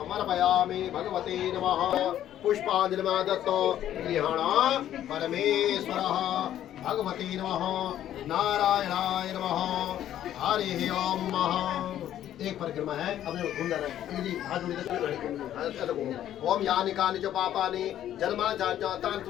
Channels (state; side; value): quieter; right; 11.6 dB